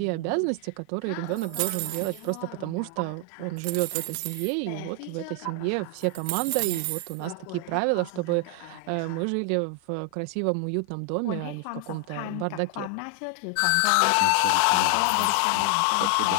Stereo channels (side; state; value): both; different; correlation 0.00